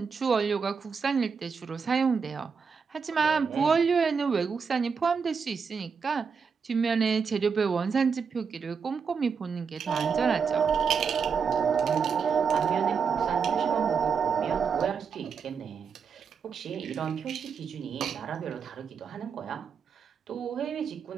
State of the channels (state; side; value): quieter; left; 6.0 dB